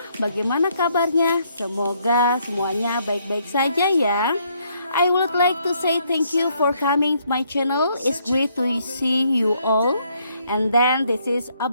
Bagaimana kabarnya? Semoga semuanya baik-baik saja ya. I would like to say thank you for coming to my channel. It's great to see you all. And then this is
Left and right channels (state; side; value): inverted; both; correlation -0.70